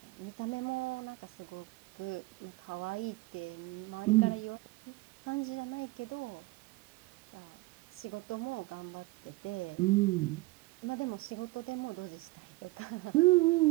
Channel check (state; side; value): quieter; left; 21.5 dB